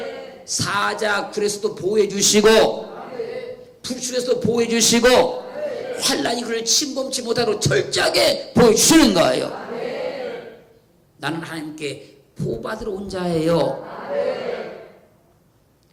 사자굴에서도 보호해 주시고, 불출에서도 보호해 주시고, 환란이 그를 침범치 못하도록 철저하게 보호해 주시는 거예요. 나는 하나님께 보호받으러 온 자예요.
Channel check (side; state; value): both; identical; correlation 1.00